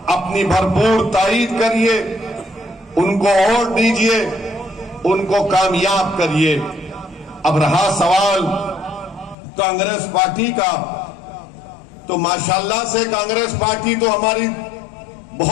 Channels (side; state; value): right; drops out; at 9.3 s